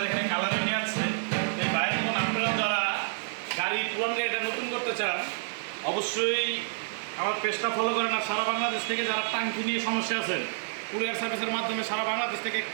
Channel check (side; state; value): left; silent; digital silence